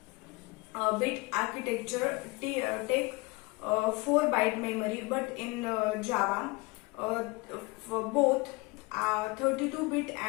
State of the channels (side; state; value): right; quieter; 25.0 dB